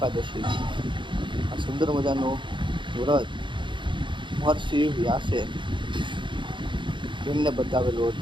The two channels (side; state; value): left; late; 0.23 ms